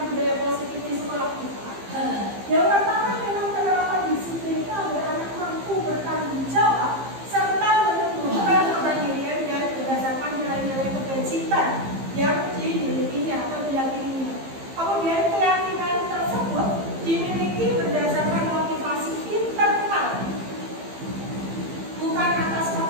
budaya positif di sekolah kita? Yang pertama memang penerapan disiplin itu agar anak mampu bertanggung jawab serta menumbuhkan kemandirian dan berdasarkan nilai-nilai kebajikan yang dimilikinya atau diyakininya. Kemudian keyakinan tersebut dimiliki berdasarkan motivasi internal, bukan atas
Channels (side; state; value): left; late; 15 ms